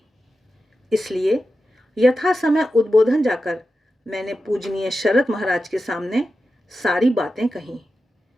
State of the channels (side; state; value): both; normal; correlation 0.91